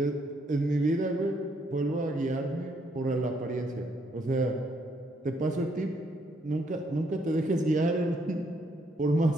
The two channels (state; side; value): normal; both; correlation 0.72